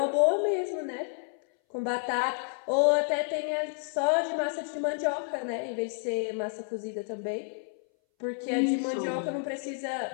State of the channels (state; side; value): silent; right; 58 dB below the other